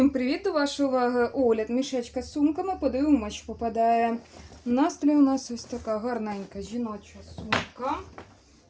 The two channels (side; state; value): both; identical; correlation 1.00